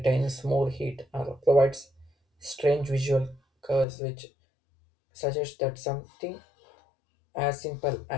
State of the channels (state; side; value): drops out; right; at 3.9 s